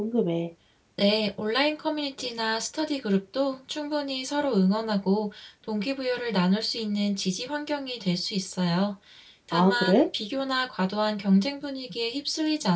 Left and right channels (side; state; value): both; identical; correlation 1.00